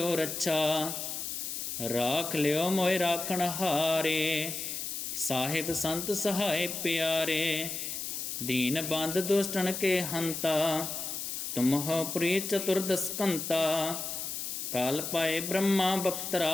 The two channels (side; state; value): left; noise; hiss, 5 dB below the sound